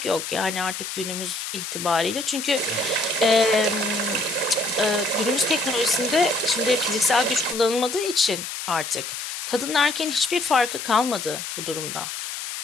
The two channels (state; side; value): noise; left; hiss, 6 dB below the sound